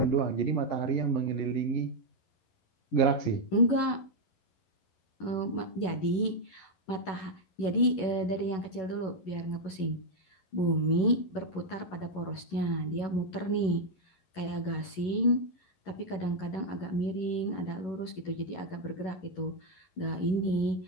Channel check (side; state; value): right; late; 11 ms